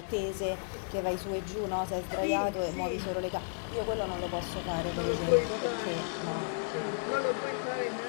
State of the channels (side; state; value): right; silent; digital silence